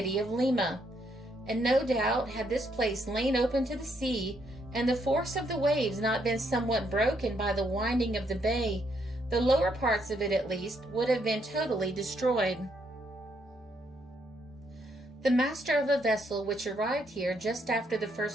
of Lima. And no doubt, had this place lain open to the sea, and the force of the waves not been somewhat broken by the winding of the bay, the lower parts of it at least would have been totally destroyed. The master of a vessel which arrived here just after the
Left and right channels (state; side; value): normal; both; correlation 0.74